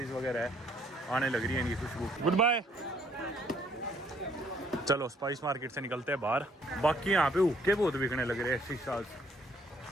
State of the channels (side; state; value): both; normal; correlation 0.64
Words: वगैरह है, आने लग रही है इनकी खुशबू। Good bye. चलो स्पाइस मार्केट से निकलते हैं बाहर। बाकी यहाँ पे हुक्के बहुत बिकने लग रहे हैं, शीशा